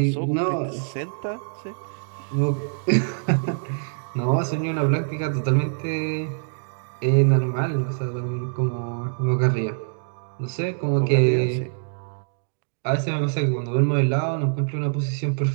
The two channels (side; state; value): left; silent; digital silence